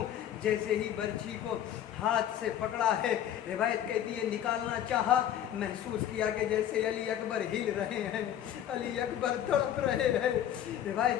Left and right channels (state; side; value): quieter; right; 10.7 dB